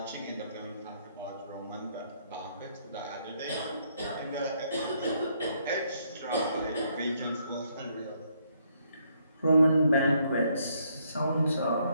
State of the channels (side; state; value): both; inverted; correlation -0.71